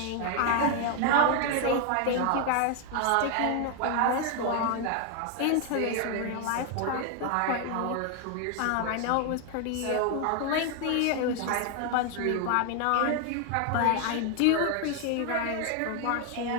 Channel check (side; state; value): both; different; correlation 0.00